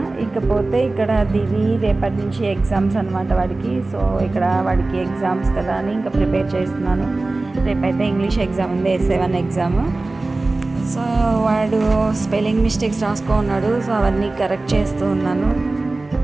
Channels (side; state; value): left; quieter; 3.2 dB